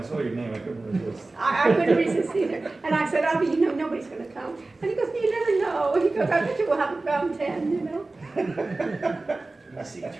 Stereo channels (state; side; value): quieter; left; 3.2 dB